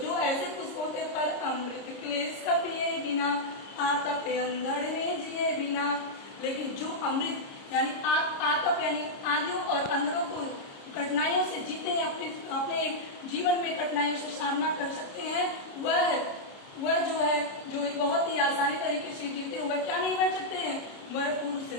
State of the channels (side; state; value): right; late; 30 ms